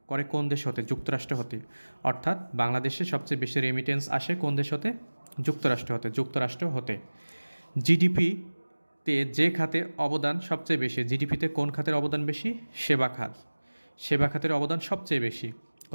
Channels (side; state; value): both; inverted; correlation -1.00